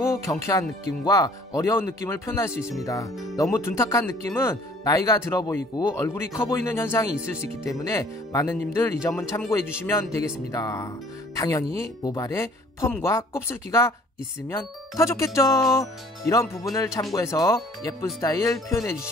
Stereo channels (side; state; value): both; normal; correlation 0.55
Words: 경쾌한 느낌과 어려운 느낌을 표현할 수 있습니다. 너무 둔탁한 느낌은 나이가 들어 보이고 얼굴이 커 보이는 현상이 있을 수 있기 때문에 많은 님들 이 점은 참고해 주시면 되겠습니다. 당연히 모발에 펌과 곱슬기가 있으면 더 좋겠죠. 이런 부분을 참고해서 예쁜 스타일 표현해